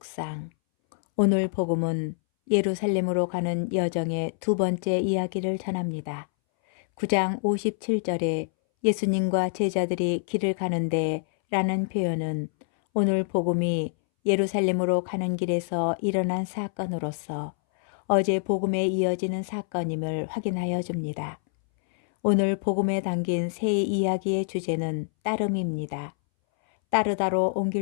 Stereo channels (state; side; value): silent; right; 61 dB below the other